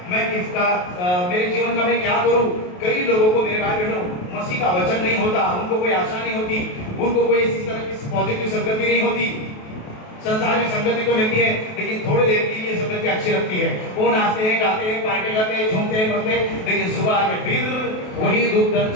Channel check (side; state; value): right; late; 28 ms